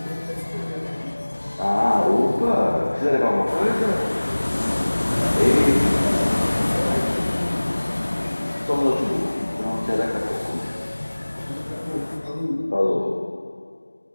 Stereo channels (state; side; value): inverted; both; correlation -1.00